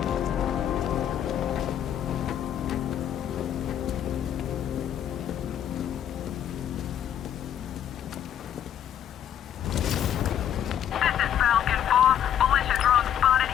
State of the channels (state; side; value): quieter; right; 10.0 dB